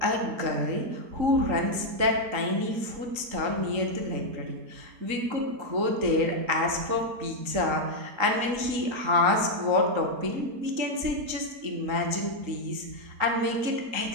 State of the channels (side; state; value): left; late; 3.8 ms